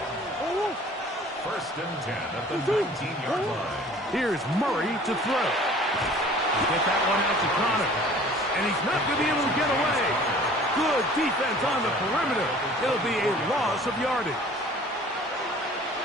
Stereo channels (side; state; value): both; normal; correlation 0.49